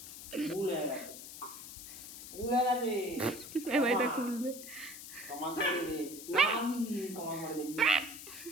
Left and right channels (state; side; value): noise; left; hiss, 12 dB below the sound